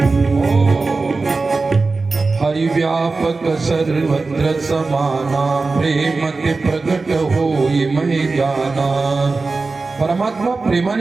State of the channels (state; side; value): quieter; left; 3.9 dB